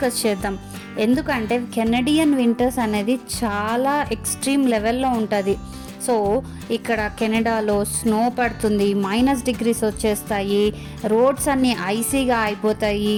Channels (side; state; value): both; identical; correlation 1.00